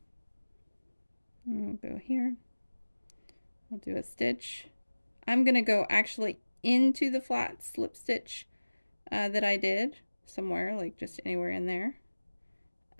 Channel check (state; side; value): inverted; both; correlation -1.00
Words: I'll go here. I'll do a stitch. I'm going to go actually into the flat slip stitch that I did somewhere, like just anywhere in there,